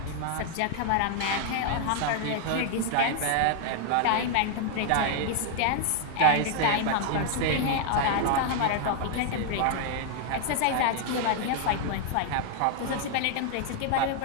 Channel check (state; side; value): different; both; correlation 0.00